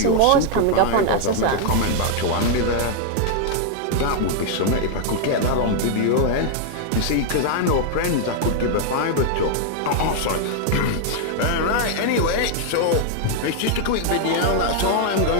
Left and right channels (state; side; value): different; both; correlation 0.00